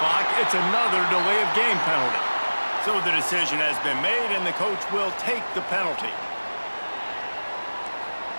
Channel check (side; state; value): both; inverted; correlation -1.00